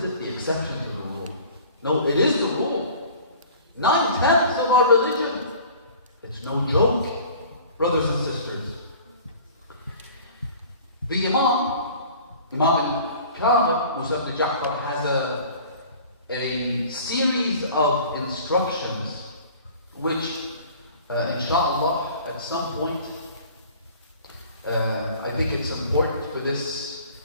it the exception to the rule? No, it is the rule. 9/10 of our religion. It's no joke, brothers and sisters. The Imam al-Kamil, Musa ibn Ja'far, has a series of instructions which, inshallah, at some point, I think it's important for this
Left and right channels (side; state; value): both; inverted; correlation -0.46